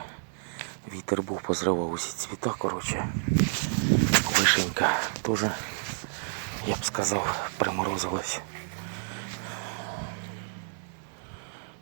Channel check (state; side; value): silent; left; digital silence